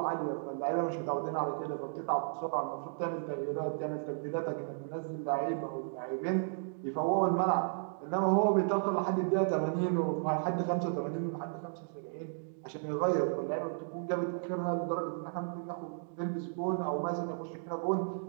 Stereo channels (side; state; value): left; silent; digital silence